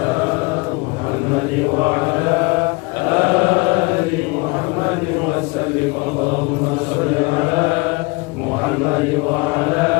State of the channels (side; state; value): right; quieter; 27.3 dB